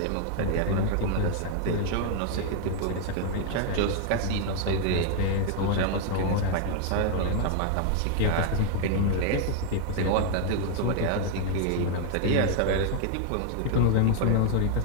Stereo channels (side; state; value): both; different; correlation 0.00